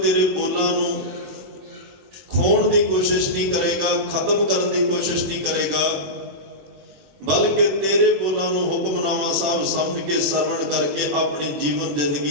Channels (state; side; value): late; left; 21 ms